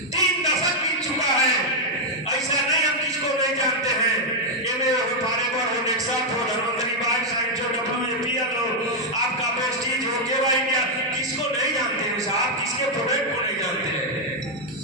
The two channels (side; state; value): both; normal; correlation -0.01